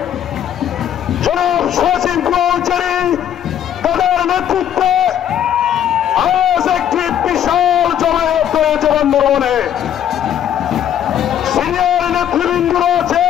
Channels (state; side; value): quieter; right; 10.0 dB